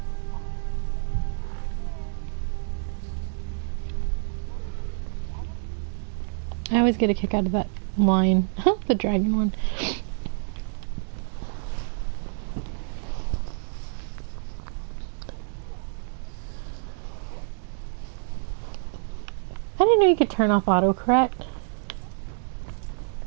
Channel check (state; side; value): silent; left; digital silence